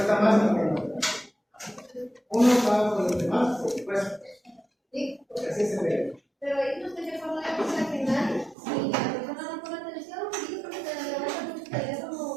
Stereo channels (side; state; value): left; drops out; at 8.6 s